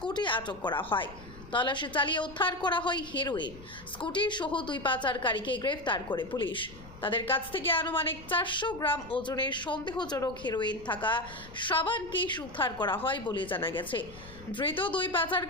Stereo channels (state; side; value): noise; left; rumble, 18 dB below the sound